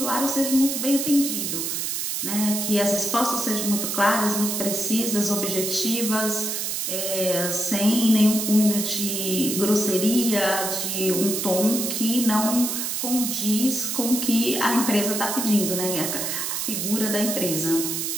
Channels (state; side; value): noise; right; hiss, 2 dB below the sound